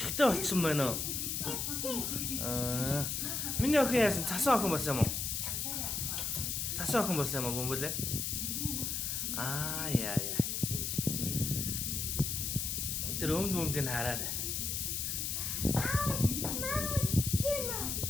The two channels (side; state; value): left; noise; hiss, 1 dB below the sound